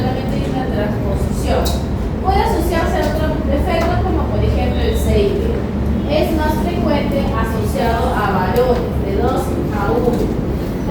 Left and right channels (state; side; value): identical; both; correlation 1.00